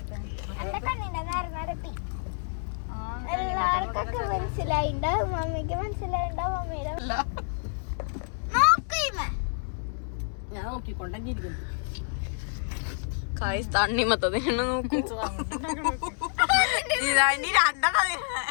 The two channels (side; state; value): right; silent; digital silence